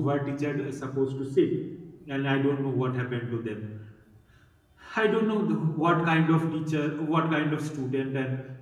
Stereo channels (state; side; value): identical; both; correlation 1.00